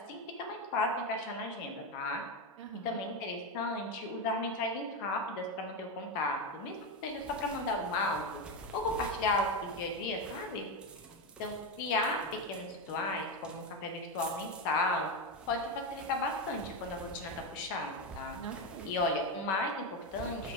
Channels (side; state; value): both; normal; correlation 0.12